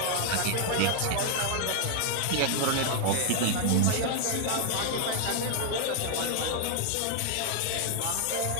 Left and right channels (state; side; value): different; both; correlation 0.00